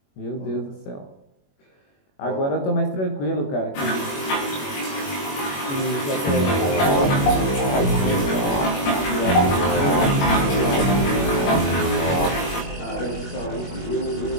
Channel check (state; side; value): late; right; 21 ms